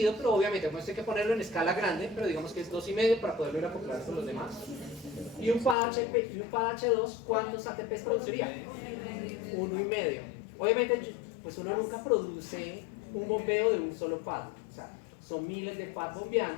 pero obviamente pues hay que ponerlo en escala grande, pero digamos que es 2,5 para poderlo ir a acoplar con los demás. Y un FADH2, ¿cuántos ATPs produciría? 1,5. Obviamente, pues uno nunca produce un bombeo de un solo pad, o sea, son miles de pads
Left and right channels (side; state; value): right; drops out; at 5.8 s